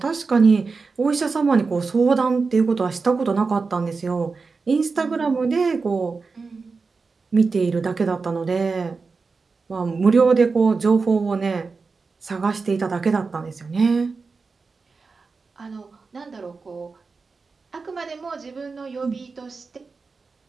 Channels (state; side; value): quieter; left; 4.4 dB